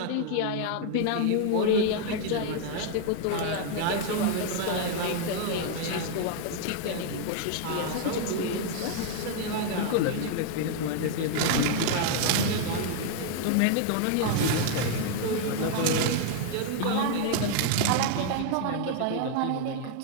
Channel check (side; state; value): both; different; correlation 0.00